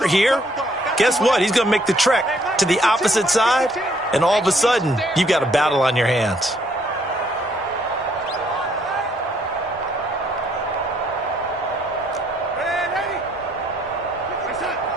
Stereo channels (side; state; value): both; normal; correlation 0.67